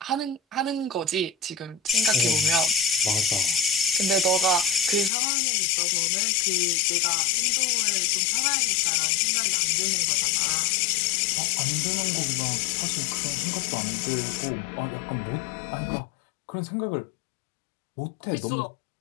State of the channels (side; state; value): right; drops out; at 5.1 s